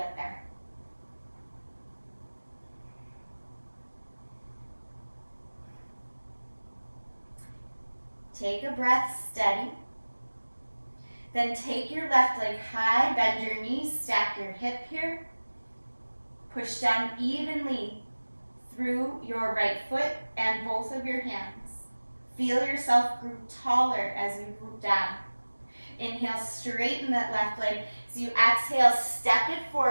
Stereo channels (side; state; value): both; inverted; correlation -1.00